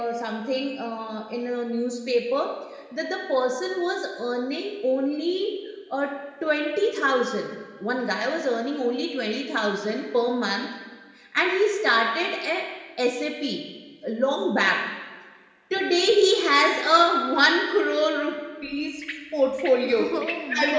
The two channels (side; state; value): both; identical; correlation 1.00